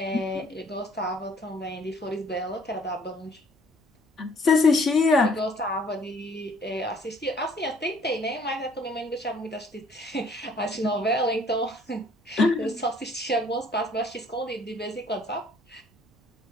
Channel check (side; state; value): both; normal; correlation 0.58